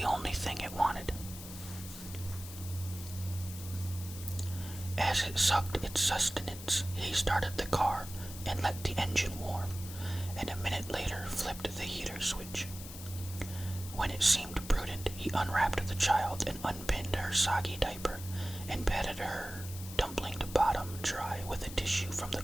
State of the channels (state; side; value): noise; left; hiss, 13 dB below the sound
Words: only thing it wanted. As it sucked its sustenance, he started the car and let the engine warm, and a minute later flipped the heater switch. When it seemed prudent, he unwrapped the child and unpinned her soggy diaper and patted her dumpling to bottom dry with a tissue from the